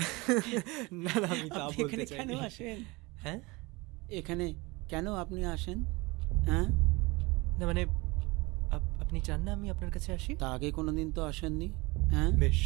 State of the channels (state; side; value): quieter; left; 24.2 dB